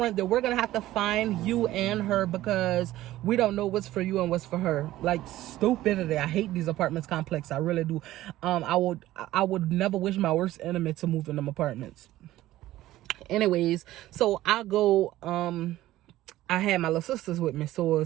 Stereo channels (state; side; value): quieter; left; 15.3 dB